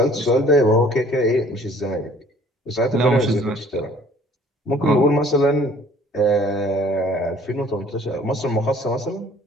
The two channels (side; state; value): both; normal; correlation 0.55